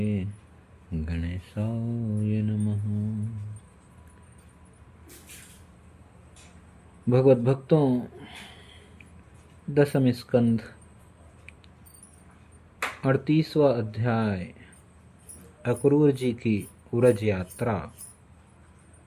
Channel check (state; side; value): identical; both; correlation 1.00